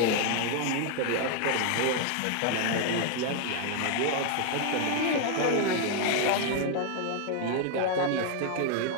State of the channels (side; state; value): both; different; correlation 0.00